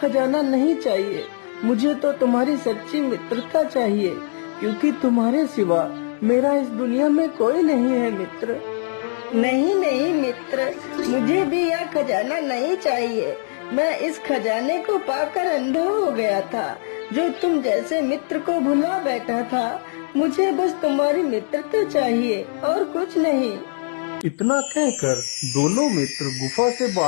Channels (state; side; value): silent; right; digital silence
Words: नहीं चाहिए। मुझे तो तुम्हारी सच्ची मित्रता चाहिए, क्योंकि तुम्हारे सिवा मेरा इस दुनिया में कोई नहीं है मित्र। नहीं नहीं मित्र, मुझे भी यह खजाना नहीं चाहिए। मैं इस खजाने को पाकर अंधा हो गया था, जो तुम जैसे मित्र को भुला बैठा था। मुझे बस तुम्हारी मित्रता चाहिए और कुछ नहीं। इतना कहकर दोनों मित्र गुफा से